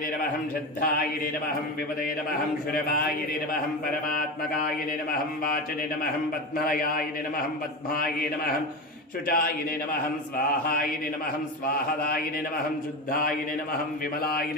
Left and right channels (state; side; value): normal; both; correlation 0.22